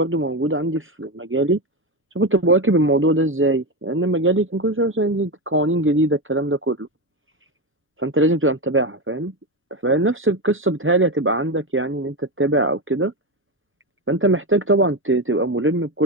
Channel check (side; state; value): both; normal; correlation 0.15